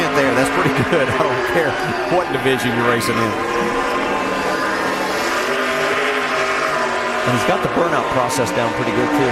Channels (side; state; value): both; identical; correlation 1.00